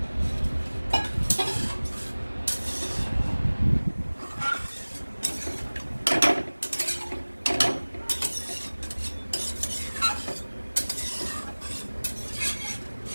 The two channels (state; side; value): inverted; both; correlation -1.00